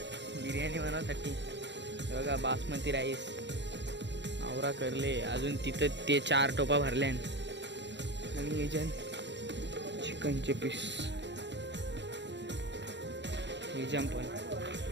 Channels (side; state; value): left; late; 0.52 ms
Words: बिर्याणी बनवण्यासाठी. बघा बासमती राईस आवरा करले अजून तिथं ते 4 टोपा भरले. आणि याच्यात चिकनचे पीस एजाम